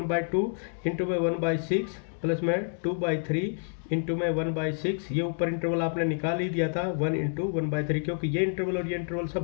इंटू में 1/6 प्लस में 2/3 इंटू में 1/6। ये ऊपर इंटरवल आपने निकाल ही दिया था 1 इंटू 1/3 क्योंकि ये इंटरवल और ये इंटरवल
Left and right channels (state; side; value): silent; right; digital silence